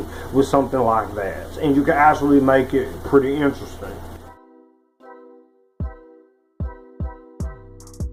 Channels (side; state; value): both; identical; correlation 1.00